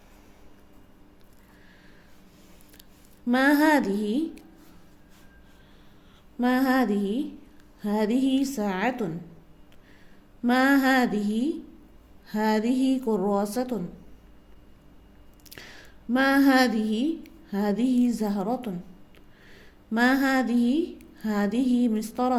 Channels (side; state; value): both; identical; correlation 1.00